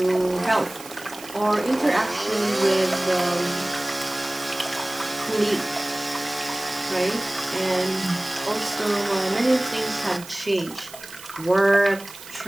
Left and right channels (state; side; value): noise; right; hiss, 16 dB below the sound